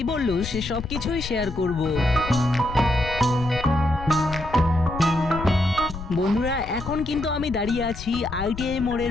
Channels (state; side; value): noise; left; rumble, 10 dB below the sound